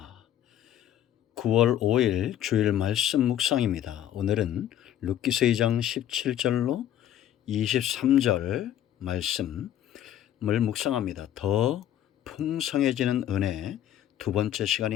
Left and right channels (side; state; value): right; quieter; 11.3 dB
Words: 9월 5일 주일 말씀 묵상입니다. 오늘은 룻기서 2장 17절로 23절 말씀을 묵상합니다. 더 풍성해지는 은혜 두 번째